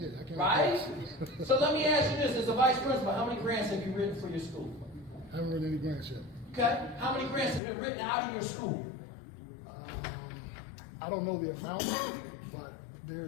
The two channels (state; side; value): drops out; right; at 7.6 s